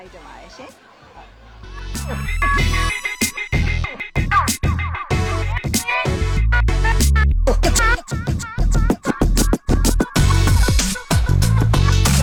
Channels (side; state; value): both; identical; correlation 1.00